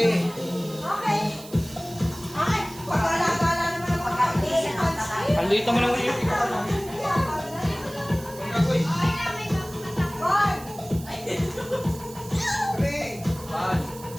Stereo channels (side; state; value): right; noise; hiss, 17 dB below the sound